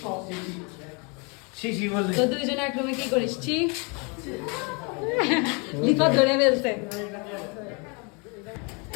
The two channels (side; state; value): right; quieter; 32.4 dB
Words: তো দুইজন এক রুমে কি করিস ছি লিফাত ধরে ফেলছে